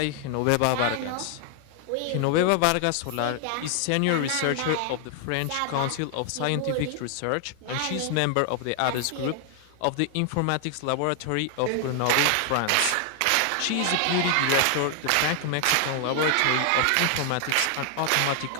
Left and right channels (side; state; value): both; different; correlation 0.00